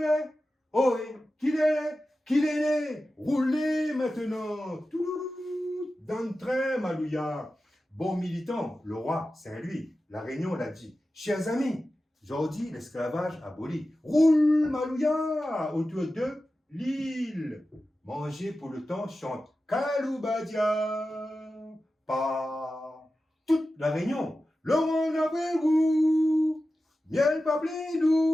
oh, qu'il est né, qu'il est né, roulez maintenant, tout, dans le train, Malouya. Bon militant, le roi Saint-Louis, la Réunion l'a dit. Chers amis, aujourd'hui, l'esclavage aboli. Roule, Malouya, autour de l'île. Manger pour le temps chante Kaloubadia. Pas toute la Réunion. Le monde après vous. Miel pas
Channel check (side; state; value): both; normal; correlation 0.93